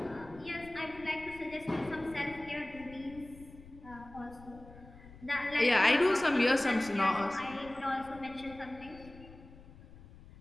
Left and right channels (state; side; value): noise; left; rumble, 19 dB below the sound